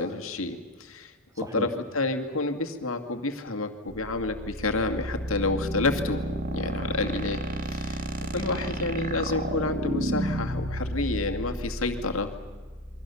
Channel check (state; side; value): normal; both; correlation 0.17